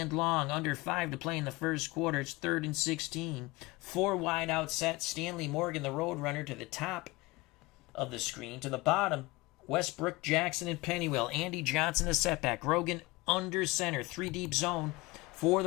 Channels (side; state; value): right; quieter; 22.0 dB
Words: long. Under 5 to play in the 1st quarter. It's 3rd and 16. 4 wide out set. Stanley Morgan, the Roadrunner, to the top of the screen. To the bottom, Westbrook, Jackson, and Pennywell. Andy Johnson, the setback. Grogan under center. 3 deep zone for